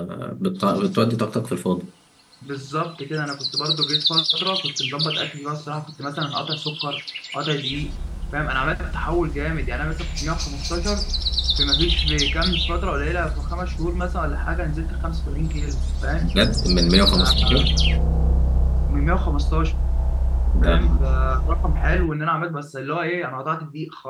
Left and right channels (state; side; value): identical; both; correlation 1.00